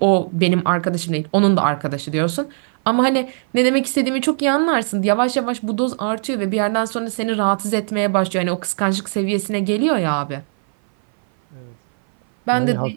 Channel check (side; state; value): left; silent; 58 dB below the other